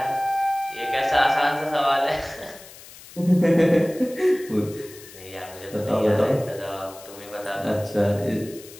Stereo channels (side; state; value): left; noise; hiss, 19 dB below the sound